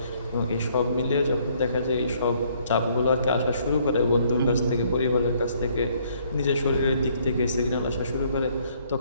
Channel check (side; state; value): both; inverted; correlation -0.65